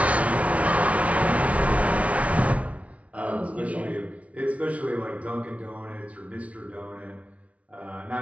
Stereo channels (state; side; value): late; left; 0.065 ms